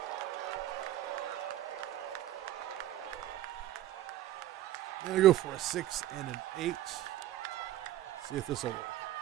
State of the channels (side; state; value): left; quieter; 13.6 dB